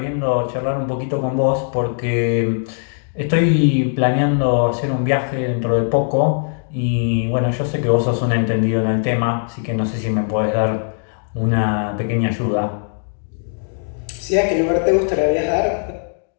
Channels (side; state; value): right; silent; 65 dB below the other